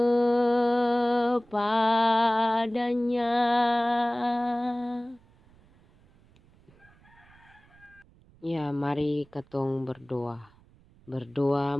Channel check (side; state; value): right; noise; rumble, 29 dB below the sound